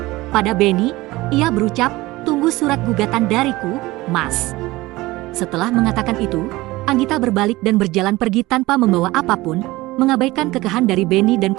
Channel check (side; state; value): left; quieter; 19.6 dB